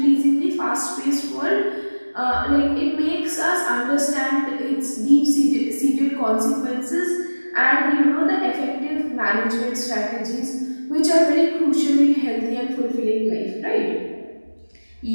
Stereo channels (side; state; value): both; inverted; correlation -1.00